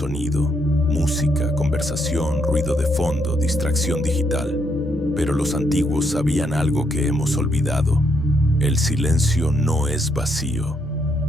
música, conversación, ruido de fondo, distracción digital. Pero los antiguos sabían algo que hemos olvidado. El silencio no es vacío.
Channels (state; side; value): normal; both; correlation 0.75